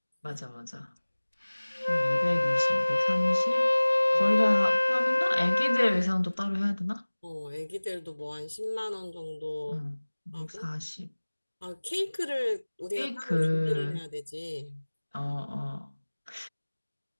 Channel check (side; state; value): both; inverted; correlation -1.00